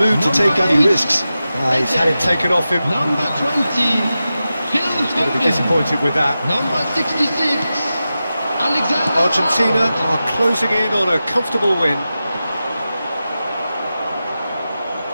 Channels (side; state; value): both; inverted; correlation -0.93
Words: to take any risks. He's had it taken off him. Number 20, Phil Going to be Foden. disappointed with that. Number 66, Alexander Argentina Arnold. are closing in on a comfortable win.